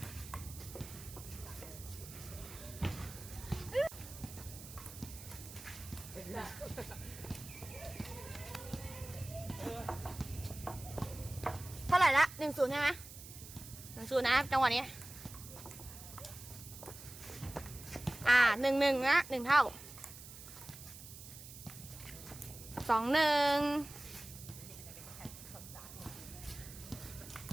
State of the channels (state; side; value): noise; right; hiss, 14 dB below the sound